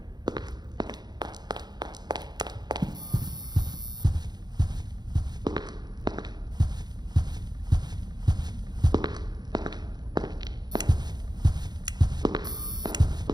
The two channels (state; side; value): late; left; 0.20 ms